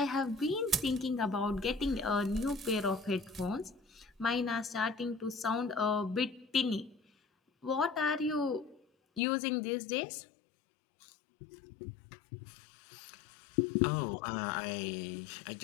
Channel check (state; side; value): drops out; right; at 9.2 s